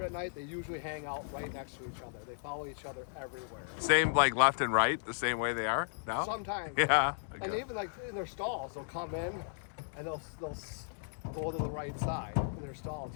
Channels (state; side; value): silent; right; digital silence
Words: at night, they usually hang out right next to each other. They follow each other everywhere. Same like left and right, the same way they are now? Sometimes. Yeah. And Okay. even like in their stalls, they'll come in and they'll go to the right side in their stalls